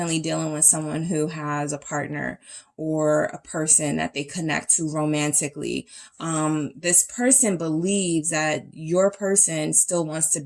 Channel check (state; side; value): identical; both; correlation 1.00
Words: dealing with someone who has a partner or a person that they connect to romantically. This person believes that your person still wants to